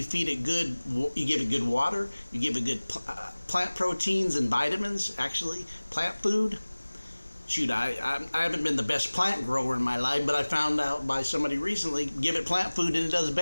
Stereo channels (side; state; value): both; inverted; correlation -1.00